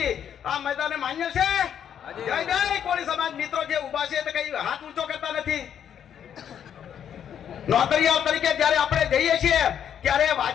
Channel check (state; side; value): quieter; right; 9.0 dB